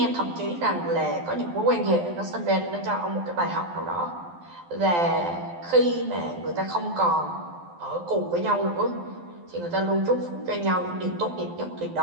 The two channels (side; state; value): left; late; 12 ms